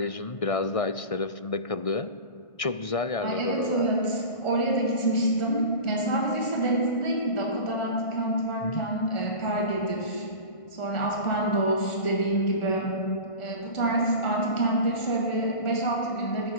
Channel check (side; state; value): right; late; 1.6 ms